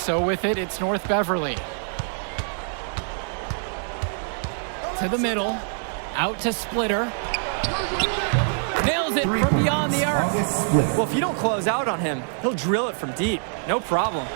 with it, it's North Beverly. To the middle. Out to Splitter. Nails it from beyond the arc. Well, if you don't close out on him, he'll drill it from deep. No problem.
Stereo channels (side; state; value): left; silent; digital silence